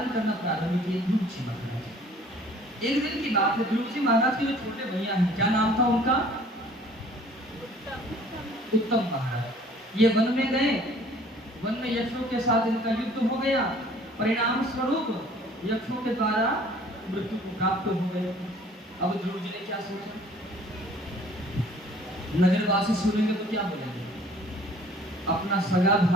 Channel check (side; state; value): both; normal; correlation 0.53